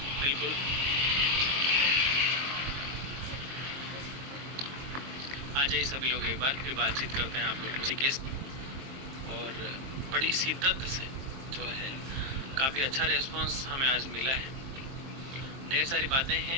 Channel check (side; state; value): left; late; 22 ms